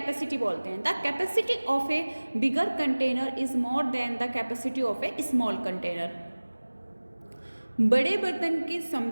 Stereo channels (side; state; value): both; inverted; correlation -1.00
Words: बोलते हैं। The capacity of A bigger container is more than the capacity of A small container. बड़े बर्तन की